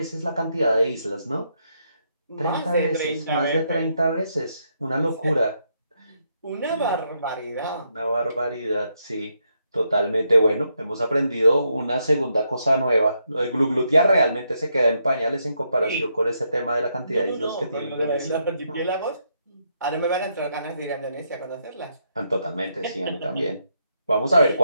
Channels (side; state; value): both; inverted; correlation -0.78